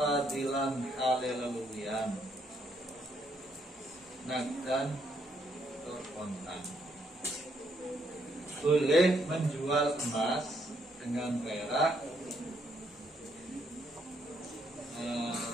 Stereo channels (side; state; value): both; normal; correlation 0.73